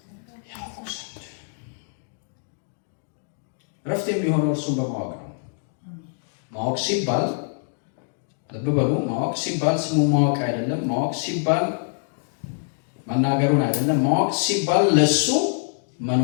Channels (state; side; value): silent; right; digital silence